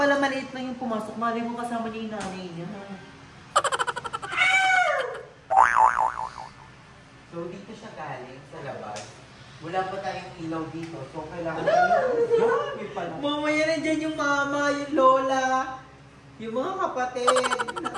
maliit lang yung pumasok. Mali mo kasama niya yung nanay niya. So, dito siya galing sa labas. Wala pa tayong ilaw dito. So, kailangan Mamaya nandiyan yung mama, yung lola, yung mga kapatid.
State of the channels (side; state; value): both; identical; correlation 1.00